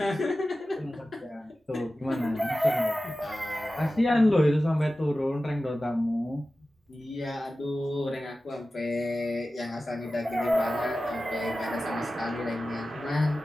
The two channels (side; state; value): both; normal; correlation 0.95